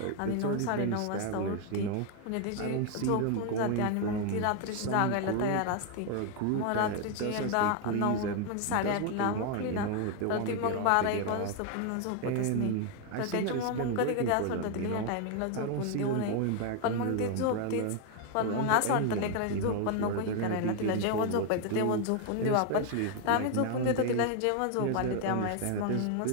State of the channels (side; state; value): both; different; correlation 0.01